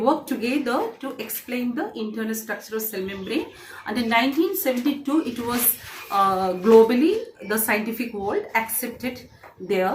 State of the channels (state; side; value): identical; both; correlation 1.00